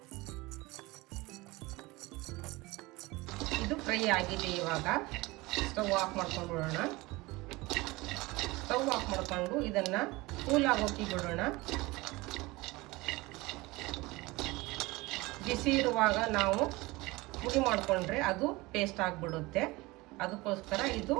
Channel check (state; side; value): quieter; left; 21.8 dB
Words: ಇದು ಫ್ರೈ ಆಗಿದೆ. ಇವಾಗ ಸ್ಟವ್ ಆಫ್ ಮಾಡ್ಕೊಂಡು ಬಿಡೋಣ. ಸ್ಟವ್ ಆಫ್ ಮಾಡ್ಕೊಂಡು ಇದನ್ನು ಕೂಲ್ ಆಗೋಕೆ ಬಿಡೋಣ. ಬಿಸಿ ಇರುವಾಗ ನಾವು ಪುಡಿ ಮಾಡಿಕೊಂಡ್ರೆ ಅದು ಪೇಸ್ಟ್ ಆಗಿಬಿಡುತ್ತೆ. ಅದಕ್ಕೋಸ್ಕರ ಇದು